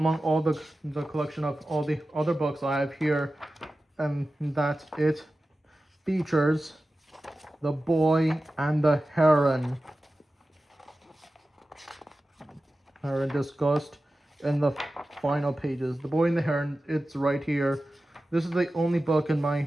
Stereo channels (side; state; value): both; normal; correlation 0.94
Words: all the collection of all the other books I have here, and that it features The Boy and the Heron. Discussed in the final pages. The Boy and the Heron, it's right here. This is the only book in my